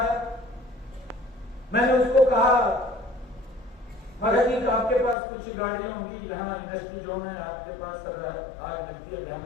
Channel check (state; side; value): drops out; right; at 5.2 s